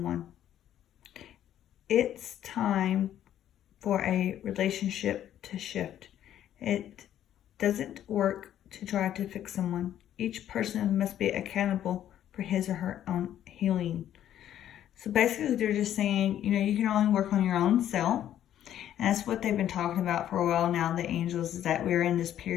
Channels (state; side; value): quieter; right; 11.2 dB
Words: It's time for a relationship to shift. It doesn't work to try to fix someone. Each person must be accountable for his or her own healing. So basically they're just saying, you can only work on your own self. And that's what they've been talking about for a while now, the angels, is that we're in this